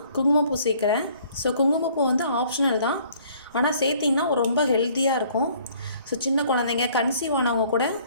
குங்குமப்பூ சேர்க்குறேன். ஸோ குங்குமப்பூ ஆப்ஷனல் தான், ஆனால் சேர்த்திங்கன்னா ரொம்ப ஹெல்த்தியாக இருக்கும். ஸோ சின்ன குழந்தைங்க கன்சீவ் ஆனவங்க கூட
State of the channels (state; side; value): inverted; both; correlation -0.58